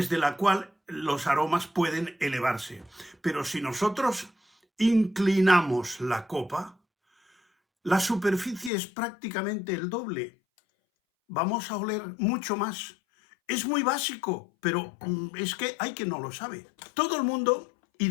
la cual los aromas pueden elevarse. Pero si nosotros inclinamos la copa, la superficie es prácticamente el doble. Vamos a oler mucho más. Es muy básico, pero es que hay quien no lo sabe. Todo el mundo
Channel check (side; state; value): right; drops out; at 8.7 s